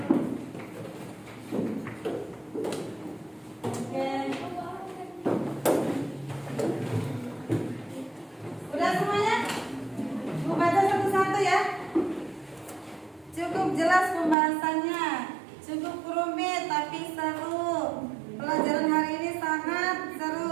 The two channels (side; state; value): left; drops out; at 14.4 s